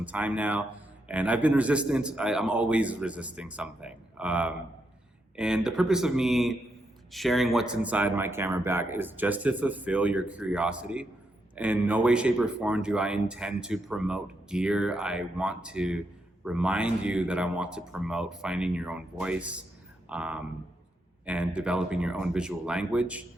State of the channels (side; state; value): both; normal; correlation 0.81